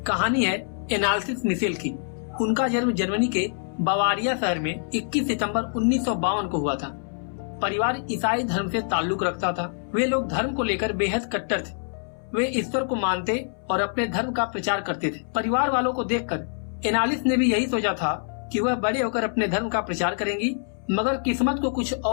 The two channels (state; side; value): silent; right; 61 dB below the other